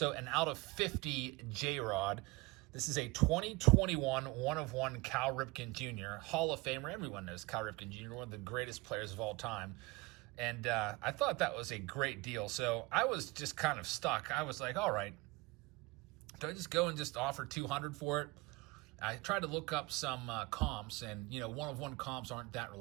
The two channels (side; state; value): left; quieter; 23.7 dB